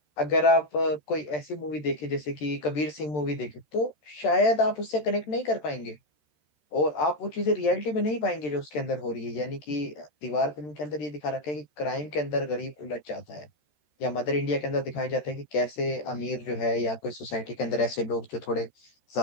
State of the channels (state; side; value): late; right; 13 ms